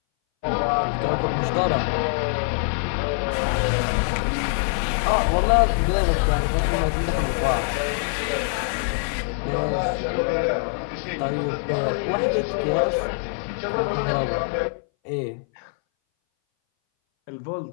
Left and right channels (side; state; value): right; silent; 60 dB below the other